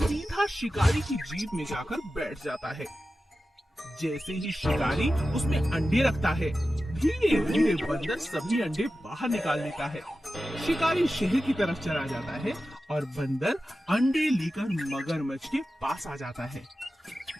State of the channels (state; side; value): normal; both; correlation 0.93